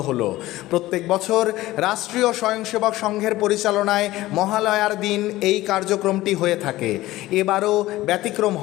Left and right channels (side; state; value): right; quieter; 17.0 dB